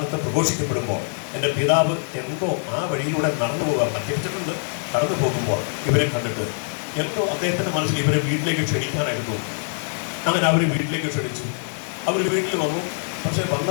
പ്രഘോഷിക്കപ്പെടുമ്പോൾ എൻ്റെ പിതാവ് എന്തോ ആ വഴിയിലൂടെ നടന്നു പോകാൻ മറ്റിച്ചിട്ടുണ്ട്. കടന്നു പോകുമ്പോൾ ഇവരെ കണ്ടിട്ട് എന്തോ അദ്ദേഹത്തിൻ്റെ മനസ്സിൽ ഇവരെ വീട്ടിലേക്ക് ക്ഷണിക്കാനായിട്ട് തോന്നി. അങ്ങനെ അവർ വീട്ടിലേക്ക് ക്ഷണിച്ചു. അവർ വീട്ടിൽ വന്നു. പക്ഷെ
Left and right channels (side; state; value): right; silent; 63 dB below the other